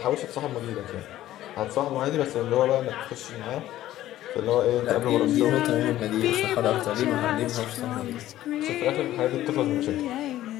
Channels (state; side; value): quieter; right; 13.9 dB